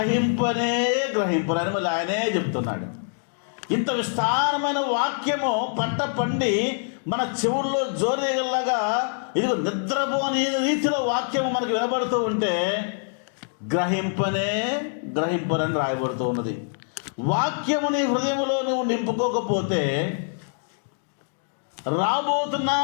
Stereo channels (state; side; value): silent; right; digital silence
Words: మళ్ళీ ఆయనే చెప్తున్నాడు. ఇంత విస్తారమైన వాక్యము పంట పండి మన చెవుల్లో జోరేగల్లాగా ఇదిగో నిద్రపోని రీతిలో వాక్యము మనకు వినబడుతూ ఉంటే గ్రహింపరని రాయబడుతూ ఉన్నది. వాక్యము నీ హృదయంలో నువ్వు నింపుకోకపోతే రాబోతున్న